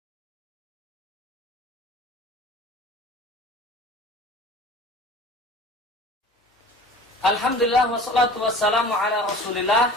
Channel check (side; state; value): both; normal; correlation 0.42